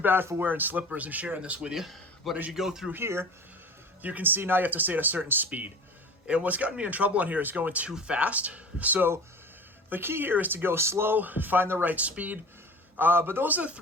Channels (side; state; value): both; normal; correlation 0.37